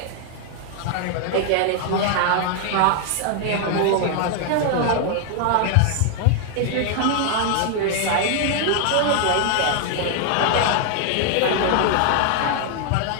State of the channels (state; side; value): different; both; correlation 0.00